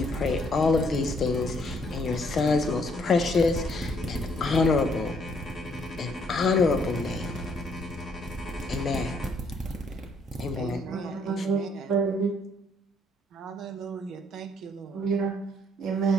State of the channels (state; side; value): normal; both; correlation 0.68